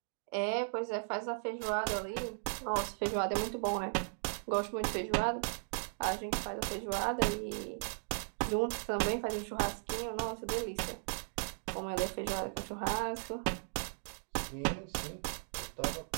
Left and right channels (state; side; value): silent; left; digital silence